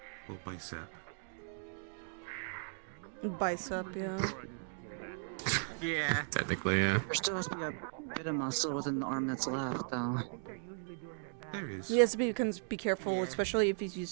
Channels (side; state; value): left; silent; digital silence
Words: Well, bicep. Bicep, yeah. Yeah. Technically, yeah. there still has to be a bit of muscle within the arm that's left, though. There is. He has to be careful, especially if he's